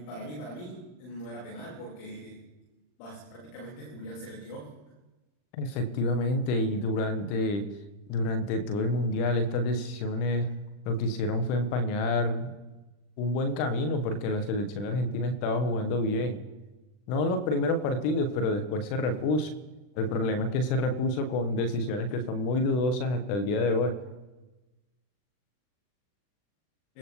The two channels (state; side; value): late; right; 39 ms